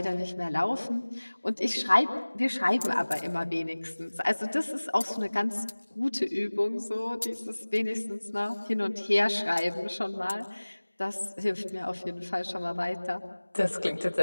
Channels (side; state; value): both; inverted; correlation -1.00